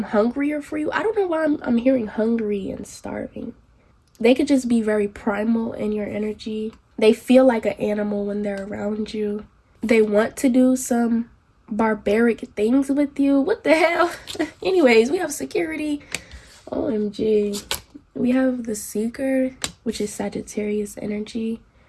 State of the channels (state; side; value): identical; both; correlation 1.00